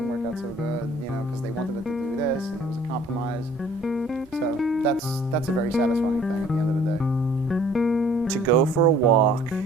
work out so good, you know, because they wanted it to do this, and it was a compromise. So that's a very satisfying thing at the end of the day. To go for a walk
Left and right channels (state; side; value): normal; both; correlation 0.55